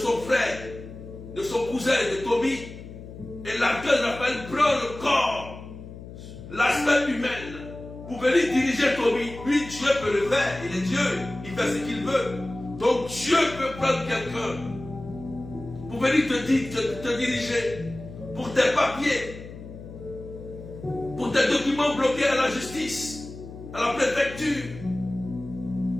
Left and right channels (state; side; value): noise; left; hum, 14 dB below the sound